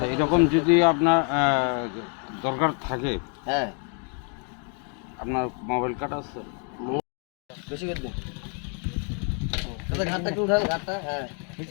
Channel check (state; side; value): quieter; right; 39.8 dB